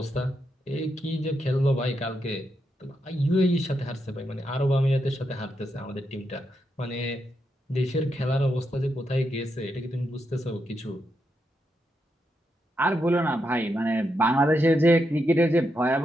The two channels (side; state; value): both; normal; correlation 0.83